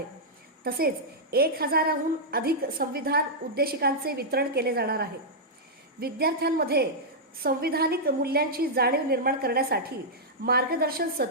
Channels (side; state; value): both; normal; correlation -0.08